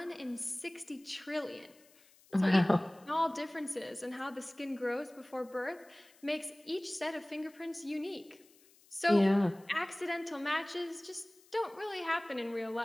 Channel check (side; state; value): left; noise; hiss, 28 dB below the sound